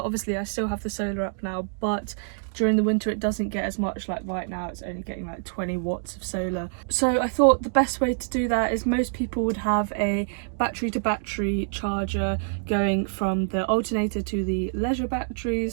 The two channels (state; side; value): silent; left; digital silence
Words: Obviously I still have the solar up now, but during the winter it doesn't get as much. Like right now it's only getting like 20 watts of solar. So I thought the best way to do that is most people would have a battery to battery charger going from the alternator to the leisure